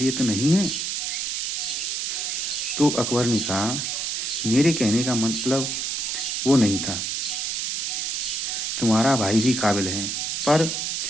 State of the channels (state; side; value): noise; right; hiss, 1 dB below the sound